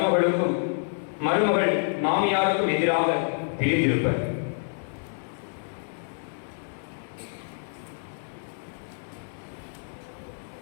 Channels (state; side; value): silent; right; digital silence